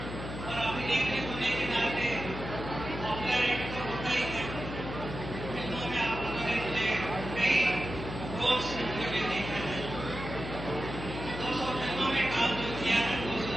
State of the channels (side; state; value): left; noise; hum, 8 dB below the sound